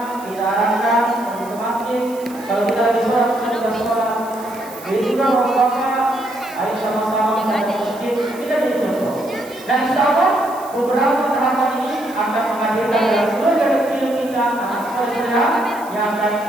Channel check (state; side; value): noise; right; hiss, 20 dB below the sound